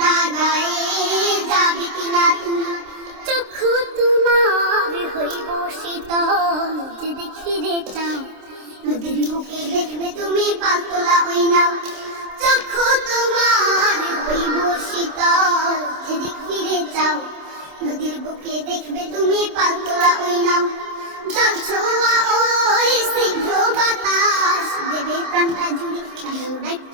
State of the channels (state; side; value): late; left; 26 ms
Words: গায়ে যাবে কিনা তুমি, চক্ষু তোমার হইব শীতল যে দেখি রে চাও, নদীর বুকে দেখবে তুমি পালতোলা ওই নাও, চক্ষু তোমার হইব শীতল যেদিক ফিরে চাও, নদীর বুকে দেখবে তুমি পালতোলা ওই নাও, জল ছোঁয়া ওই স্নিগ্ধ বাতাস দেবে প্রাণটা জুড়ে, এমন